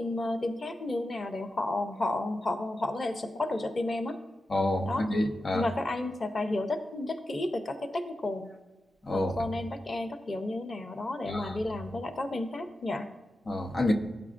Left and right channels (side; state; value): both; normal; correlation 0.91